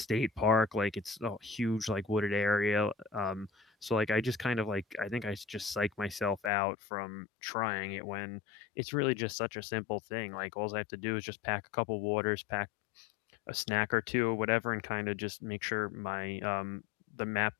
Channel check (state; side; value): drops out; right; at 6.5 s